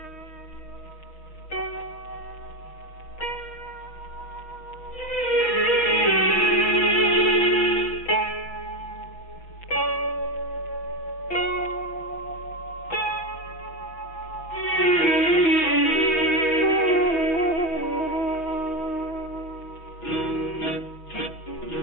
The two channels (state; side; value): late; right; 5.9 ms